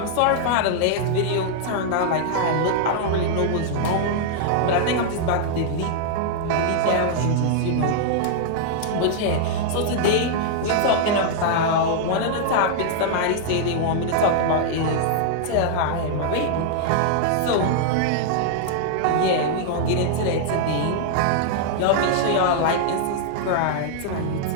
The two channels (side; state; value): both; different; correlation -0.01